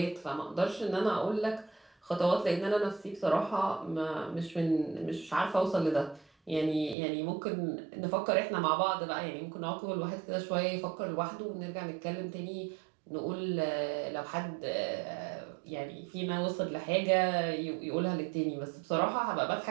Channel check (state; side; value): drops out; left; at 7.0 s